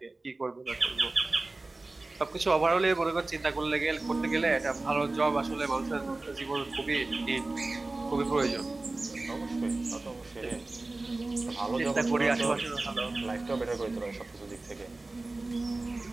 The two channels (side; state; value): left; quieter; 3.1 dB